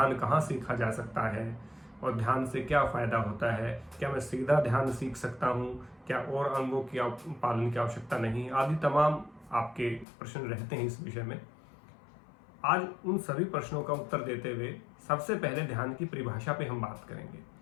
कहाँ सीखा जा सकता है और ध्यान से क्या फायदा होता है, क्या मैं सीधा ध्यान सीख सकता हूँ, क्या और अंगों की पालन की आवश्यकता नहीं, आदि तमाम आपके प्रश्न रहते हैं इस विषय में। आज उन सभी प्रश्नों का उत्तर देते हुए सबसे पहले ध्यान की परिभाषा पे हम बात करेंगे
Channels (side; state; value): right; drops out; at 10.1 s